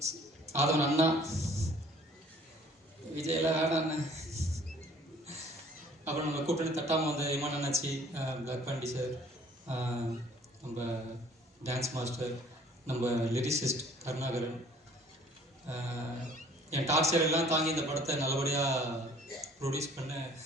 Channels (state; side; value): normal; both; correlation 0.54